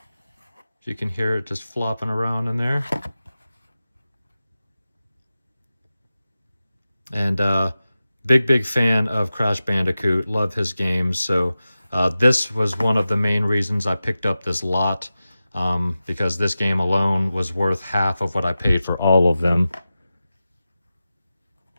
You can hear it just flopping around in there. And big fan of Crash Bandicoot, love his games. So this was one of the main reasons I picked up this lot, because this game alone was worth half of what I paid for all of them.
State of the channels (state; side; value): inverted; both; correlation -0.94